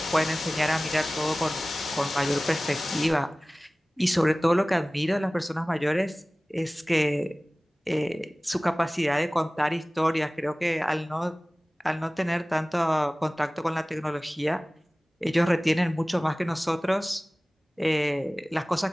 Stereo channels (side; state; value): both; normal; correlation 0.98